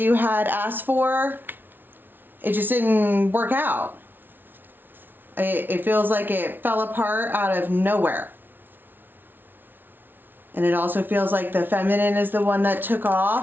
had asked for. It just didn't work out. It feels like it fell apart out of nowhere. And it also feels like the feminine is the one that took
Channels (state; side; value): late; left; 0.095 ms